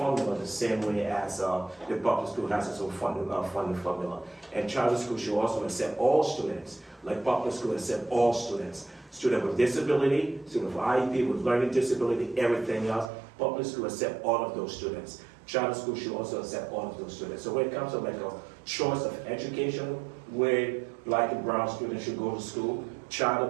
the same way as the public school has its own funding formula. And charter school should also accept all students, like public school accept all students. Student with disability, student with IEP, with learning disability, everything else. Public school accept all of those students. Charter school should also accept all of those students. So when it comes to like a choice of education, where Black and brown students should go to school, charter,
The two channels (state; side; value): drops out; left; at 13.1 s